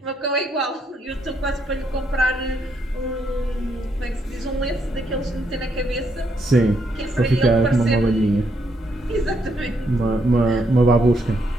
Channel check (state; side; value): normal; both; correlation 0.76